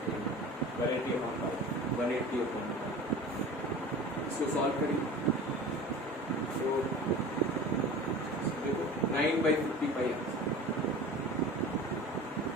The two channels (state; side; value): normal; both; correlation 0.37